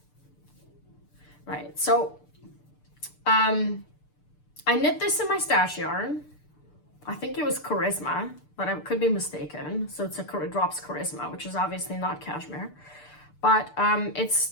Right, so I knit this in my stash yarn. I think it was Charisma, but I could be mistaken. So it's Drops Charisma, which is obviously not cashmere, but it's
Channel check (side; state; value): right; late; 6.8 ms